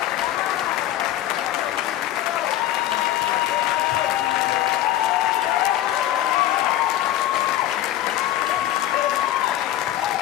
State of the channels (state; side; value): quieter; right; 13.3 dB